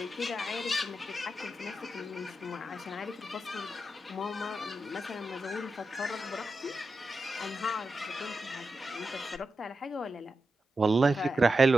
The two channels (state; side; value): normal; both; correlation 0.89